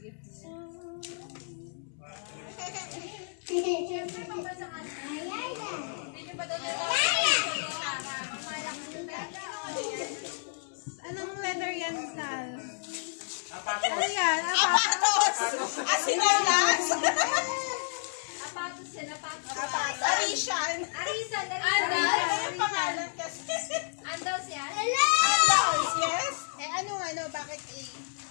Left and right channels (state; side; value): silent; right; 57 dB below the other